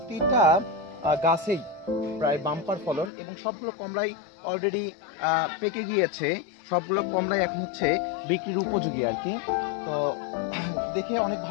গাছেই প্রায় বাম্পার ফলন, এবং সবগুলো কমলাই অলরেডি পেকে গিয়েছে। সবগুলো কমলাই এখন হচ্ছে বিক্রির উপযোগী আর কি। তো দেখে অনেক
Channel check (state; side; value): drops out; right; at 3.1 s